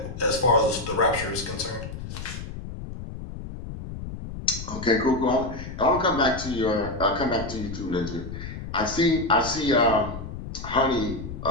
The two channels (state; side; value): noise; left; rumble, 9 dB below the sound